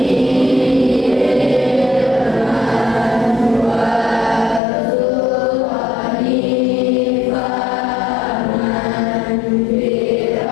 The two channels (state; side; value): drops out; right; at 4.6 s